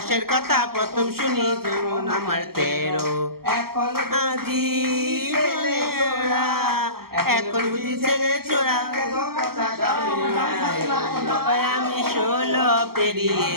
কথা প্রথম শুনি যখন আমার 13। এখন আজি ছেলে চোরা, এখন বুঝি ছেলে চোরা, আমি 16 পেরিয়ে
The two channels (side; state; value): left; late; 0.94 ms